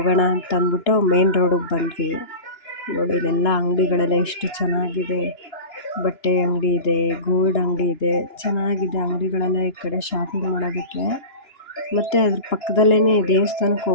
ಅಂತ ಅಂದ್ಬಿಟ್ಟು ಮೇನ್ ರೋಡಿಗೆ ಬಂದ್ವಿ. ನೋಡಿ, ಇಲ್ಲೆಲ್ಲ ಅಂಗಡಿಗಳೆಲ್ಲ ಎಷ್ಟು ಚೆನ್ನಾಗಿದೆ. ಬಟ್ಟೆ ಅಂಗಡಿ ಇದೆ, ಗೋಲ್ಡ್ ಅಂಗಡಿ ಇದೆ, ಚೆನ್ನಾಗಿದೆ ಅಂಗಡಿಗಳೆಲ್ಲ ಈ ಕಡೆ ಶಾಪಿಂಗ್ ಮಾಡೋದಕ್ಕೆ. ಮತ್ತು ಅದ್ರ ಪಕ್ಕದಲ್ಲೇ ದೇವಸ್ಥಾನಕ್ಕೆ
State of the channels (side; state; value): right; late; 2.9 ms